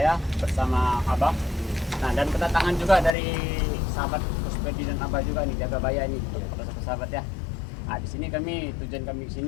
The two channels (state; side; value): drops out; right; at 3.2 s